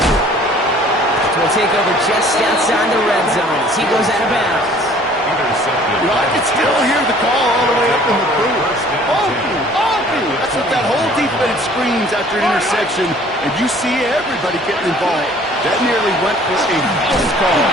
Will take over just outside the red zone as he goes out of bounds. You know, I can still hear the call all the way up in the booth. Oh, that's what that whole defense screams after an interception, and you see everybody getting involved. That nearly went for a house call.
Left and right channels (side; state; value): both; normal; correlation 0.53